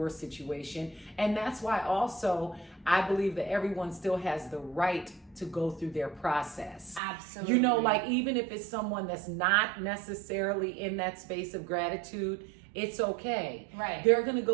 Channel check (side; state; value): left; drops out; at 7.0 s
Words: situation. And that's why also I believe that everyone still has the right to go through their process. Absolutely. Like, even if it's someone that's not necessarily in that space of gratitude, it's okay. They're going to